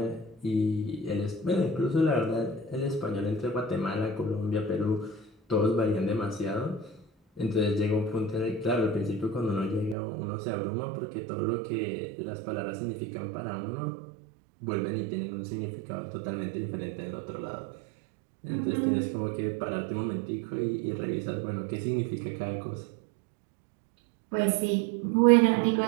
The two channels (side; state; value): left; drops out; at 10.0 s